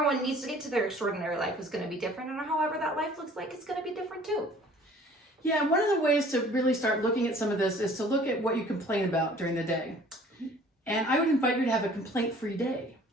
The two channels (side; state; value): both; normal; correlation 0.52